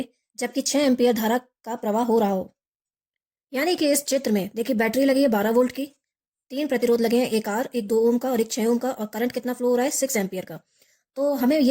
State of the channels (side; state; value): both; identical; correlation 1.00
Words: जबकि 6 एम्पियर धारा का प्रवाह हो रहा हो। यानी कि इस चित्र में देखिए, बैटरी लगी है 12 वोल्ट की, 3 प्रतिरोध लगे हैं, एक R, एक 2 ओम का और एक 6 ओम का, और करंट कितना फ्लो हो रहा है 6 एम्पियर का। तो हमें